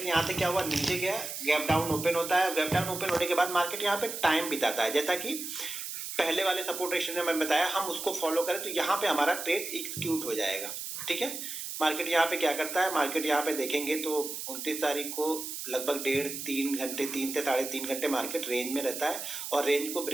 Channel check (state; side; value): noise; right; hiss, 6 dB below the sound